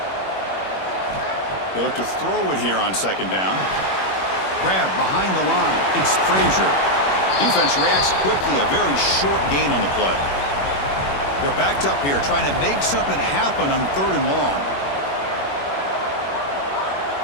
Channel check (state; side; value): late; right; 21 ms